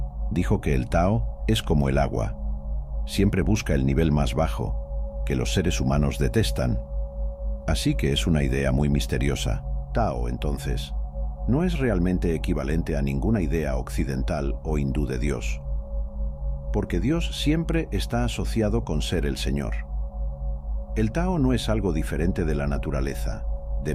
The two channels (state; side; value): identical; both; correlation 1.00